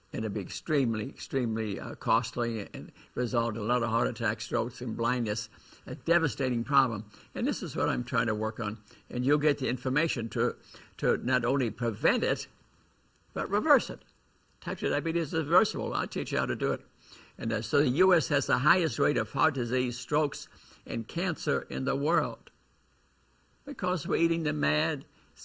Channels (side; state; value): both; identical; correlation 1.00